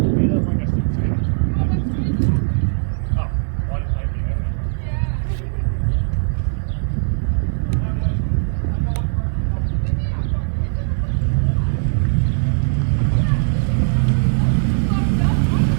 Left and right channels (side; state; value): left; silent; 66 dB below the other